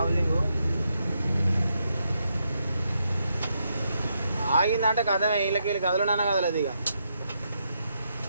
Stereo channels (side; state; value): both; inverted; correlation -0.80